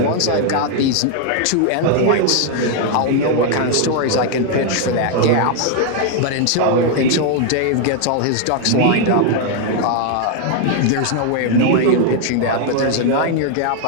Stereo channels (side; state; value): both; different; correlation 0.00